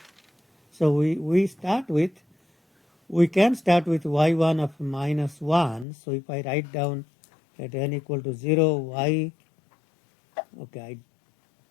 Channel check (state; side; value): drops out; right; at 5.9 s